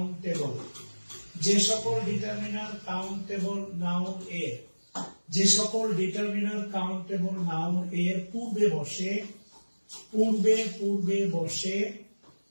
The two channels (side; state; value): both; inverted; correlation -1.00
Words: যে সকল ডিটারমিনার কাউন্টেবল নাউন এর, যে সকল ডিটারমিনার কাউন্টেবল নাউন এর পূর্বে বসে,